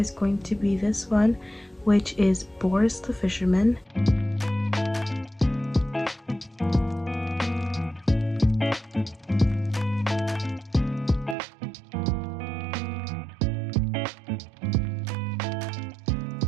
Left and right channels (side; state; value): left; drops out; at 11.4 s